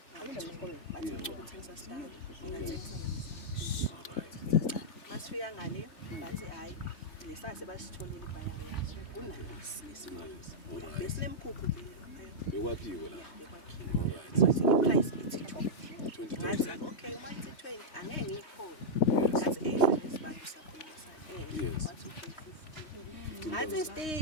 bathi ukuthengisa stand ngingathengisa alright masifika ngale bathi hayi lesase basitholile ibhayari yazo kunalesi besinemkhukhu bekwakhiwe la alright wathi iprice ithi 20 okay uma ithi 20 angeke ngiyikhona ngathi lesibantu siyakhuluma sana wathi okay 50 ngathi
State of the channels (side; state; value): right; late; 3.2 ms